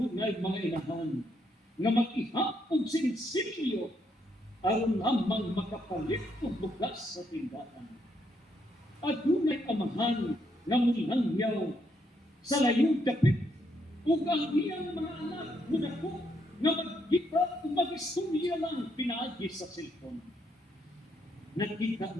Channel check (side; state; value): both; normal; correlation 0.75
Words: mga inahan na mag-ihap og sinsilyo aron lamang makapalit og bugas sa tindahan. At hunay amahan na mulangyaw sa layong dapit ug ang iyang mga anak munako na magkita o mag-istorya lang pinaagi sa cellphone. Nakita